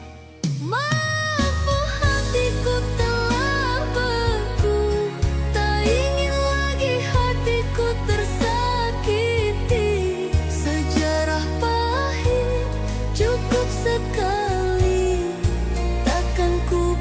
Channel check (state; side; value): identical; both; correlation 1.00